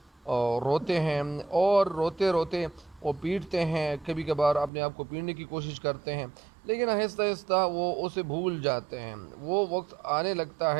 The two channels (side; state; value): left; drops out; at 4.7 s